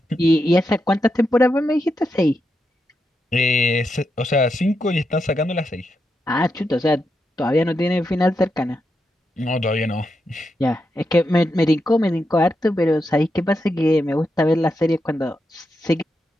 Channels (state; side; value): normal; both; correlation 0.85